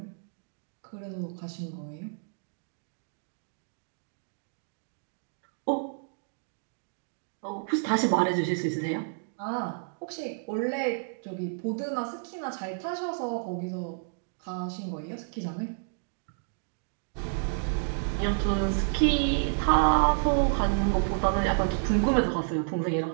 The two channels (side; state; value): left; silent; digital silence